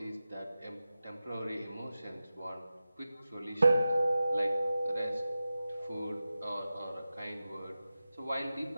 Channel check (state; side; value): inverted; both; correlation -0.94